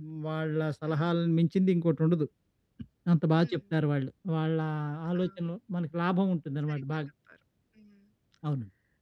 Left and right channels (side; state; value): both; identical; correlation 1.00